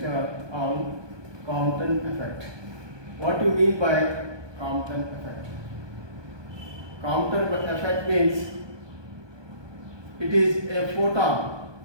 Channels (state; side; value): late; left; 1.2 ms